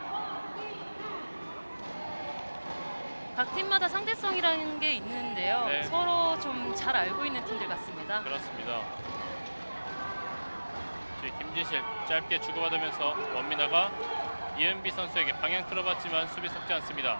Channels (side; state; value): both; inverted; correlation -1.00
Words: 각 팀마다 상대성이라는 게 있는데요. 네. 서로 좀 잘 알고 있는 팀들 같습니다. 그렇습니다. 지금 김진실 짧게 주고받으면서 원민아가 이은비 선수에게 방향 틀어봤지만 수비 속지 않습니다.